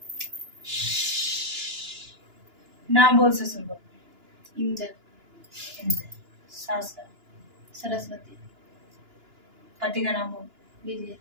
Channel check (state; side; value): late; left; 2.9 ms